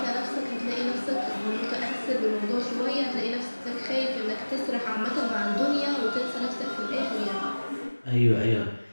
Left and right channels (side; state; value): both; inverted; correlation -1.00